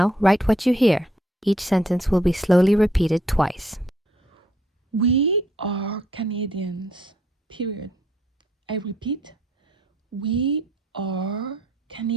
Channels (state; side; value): normal; both; correlation 0.68